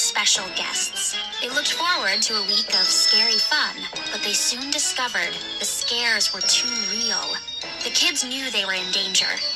guests. They looked forward to a week of scary fun, but they soon discovered the scares were too real. The kids knew they were in danger.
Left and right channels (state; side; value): identical; both; correlation 1.00